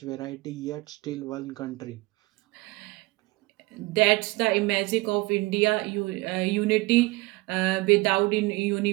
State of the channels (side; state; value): left; quieter; 22.3 dB